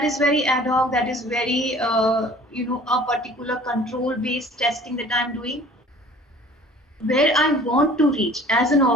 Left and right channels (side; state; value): both; normal; correlation 0.49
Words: is very ad hoc, that is very, a particular control based testing that I'm doing. Where I want to reach as an